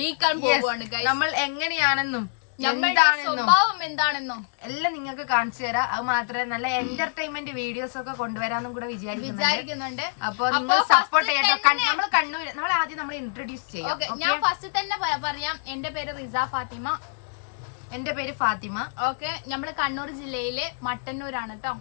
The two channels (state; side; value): silent; right; 61 dB below the other